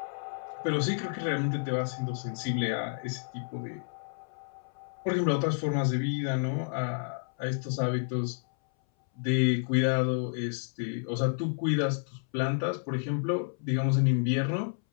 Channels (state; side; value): silent; right; 58 dB below the other